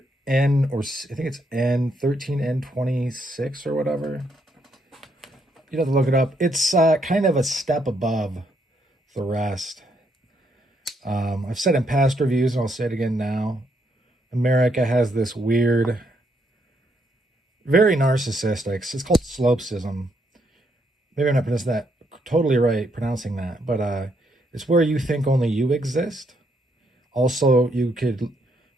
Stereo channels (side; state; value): both; normal; correlation 0.75